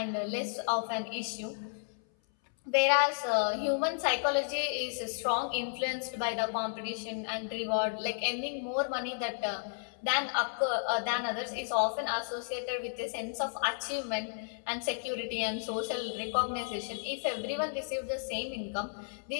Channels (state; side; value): silent; right; 56 dB below the other